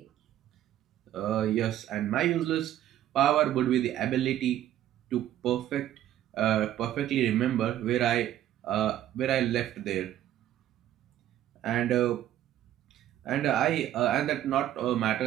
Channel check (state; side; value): quieter; left; 12.3 dB